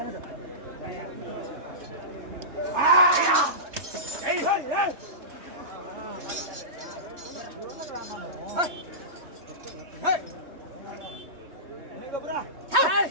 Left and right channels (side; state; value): left; late; 3.4 ms